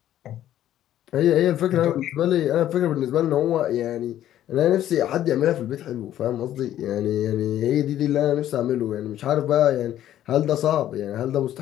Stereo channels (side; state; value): right; quieter; 12.1 dB